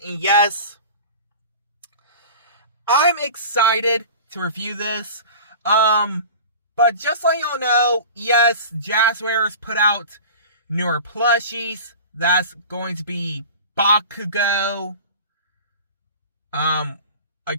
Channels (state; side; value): inverted; both; correlation -0.37